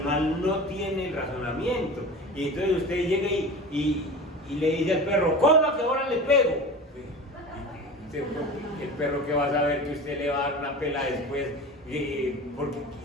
no tiene el razonamiento. Y entonces usted llega y le dice al perro, coma que ahora le pego. El perro que va a saber que usted le va a dar una pela después, porque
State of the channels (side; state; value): both; normal; correlation 0.33